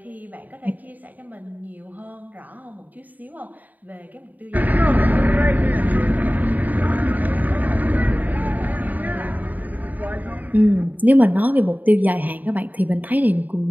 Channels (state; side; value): late; left; 0.081 ms